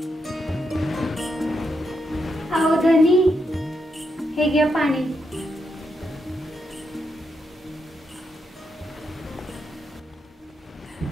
अहो धनी हे घ्या पाणी.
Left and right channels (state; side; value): normal; both; correlation 0.82